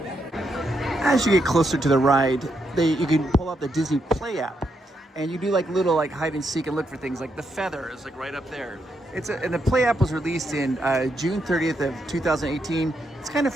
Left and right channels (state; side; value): normal; both; correlation 0.80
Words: As you get closer to the ride, you can pull out the Disney Play app, and you do like little like hide and seek and look for things like the feather is like right up there. And the Play app was released in June 30th of 2018. It's kind of